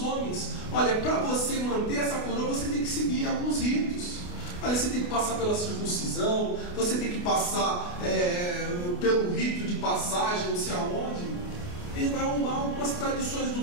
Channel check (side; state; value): right; late; 28 ms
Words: homens. Olha, para você manter essa coroa, você tem que seguir alguns ritos. Olha, você tem que passar pela circuncisão, você tem que passar pelo rito de passagem, não sei aonde. Ele vai arrumar algumas tradições